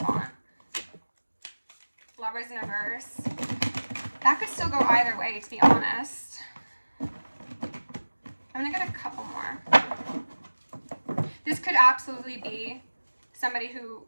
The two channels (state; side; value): inverted; both; correlation -1.00